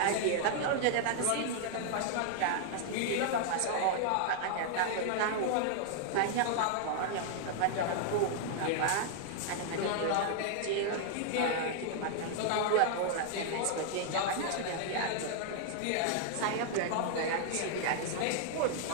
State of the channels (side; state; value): both; different; correlation -0.01